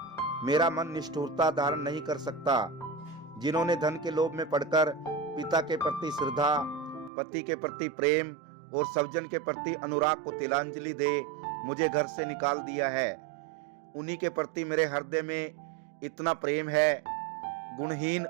मेरा मन निष्ठुरता धारण नहीं कर सकता। जिन्होंने धन के लोभ में पड़कर पिता के प्रति श्रद्धा, पति के प्रति प्रेम और सज्जन के प्रति अनुराग को तिलांजलि दे मुझे घर से निकाल दिया है, उन्हीं के प्रति मेरे हृदय में इतना प्रेम है। गुणहीन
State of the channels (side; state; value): left; drops out; at 7.1 s